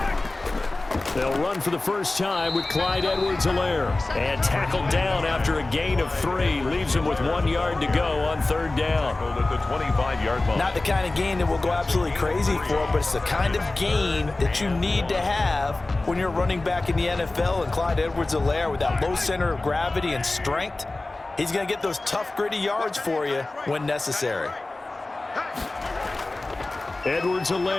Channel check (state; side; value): quieter; right; 3.0 dB